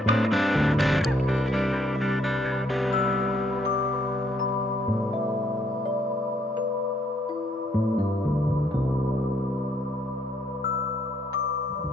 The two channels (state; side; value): normal; both; correlation 0.70